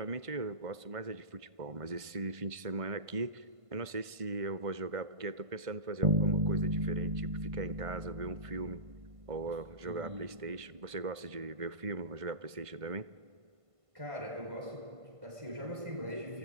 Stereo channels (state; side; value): late; left; 1.5 ms